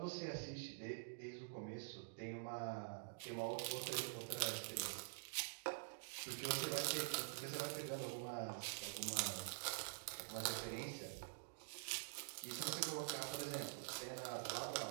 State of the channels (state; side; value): silent; left; digital silence